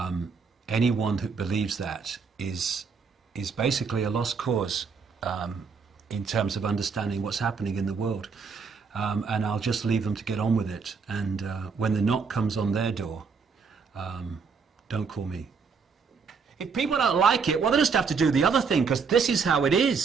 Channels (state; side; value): quieter; left; 5.4 dB